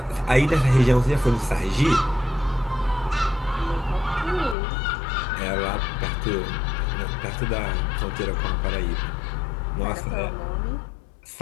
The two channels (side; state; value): right; drops out; at 4.5 s